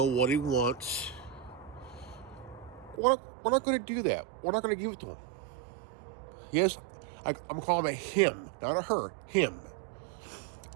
what he wants. We're not going to do that. We're not going to give it to him. Yes, I'm calling it him, not a her. Him.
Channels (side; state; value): left; drops out; at 3.0 s